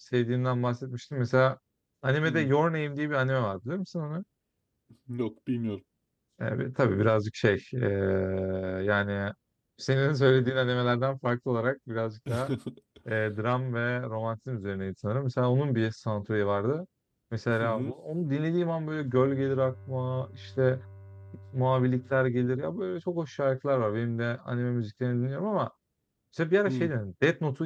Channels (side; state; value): both; identical; correlation 1.00